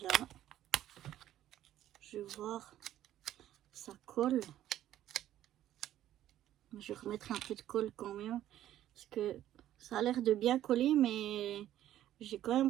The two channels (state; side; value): quieter; left; 12.5 dB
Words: Je vais voir, ça colle. Je vais remettre un peu de colle quand même, parce que ça a l'air de bien coller, mais j'ai quand